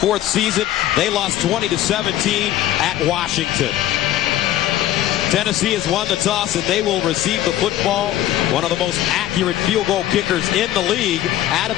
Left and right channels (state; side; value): quieter; right; 13.2 dB